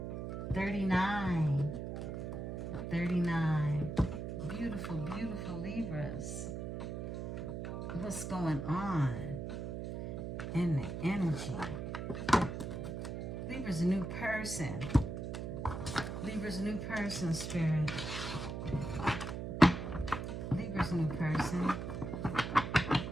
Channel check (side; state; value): right; noise; hum, 5 dB below the sound